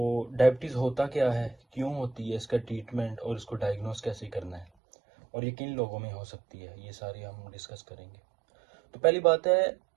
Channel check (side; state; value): left; drops out; at 4.7 s